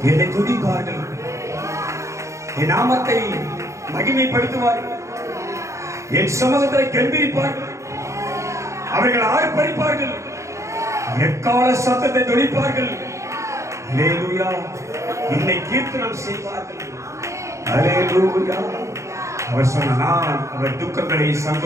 என்னை துதிப்பார்கள், என் நாமத்தை மகிமைப்படுத்துவார்கள், என் சமூகத்தை கெம்பீரிப்பார்கள், அவர்கள் ஆர்ப்பரிப்பார்கள், எக்கால சத்தத்தை துணிப்பார்கள். ஹல்லேலூயா, என்னை கீர்த்தனம் செய்வார்கள். ஹல்லேலூயா. அவர் சொன்ன, நான் அவர் துக்கங்களை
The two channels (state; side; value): late; left; 0.14 ms